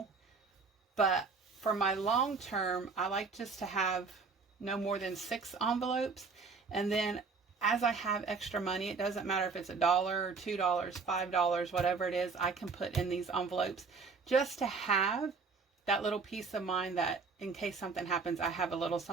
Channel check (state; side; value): quieter; left; 4.7 dB